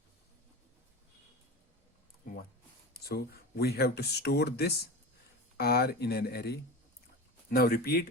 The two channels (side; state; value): both; normal; correlation 0.28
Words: 1. So we have to store this R in an array. Now